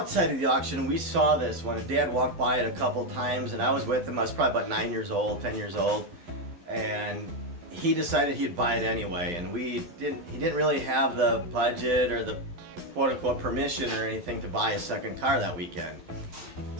of the auction we saw this when Dad walked by it a couple times, and I was with him. I was probably about 10 years old, and he decided he'd buy it anyway, and he didn't really have the budget or the quote-unquote permission or anything to buy a second car that weekend.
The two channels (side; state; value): left; late; 12 ms